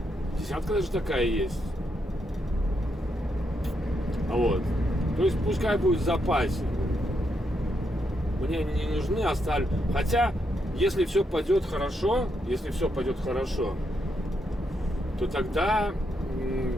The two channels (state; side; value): normal; both; correlation 0.80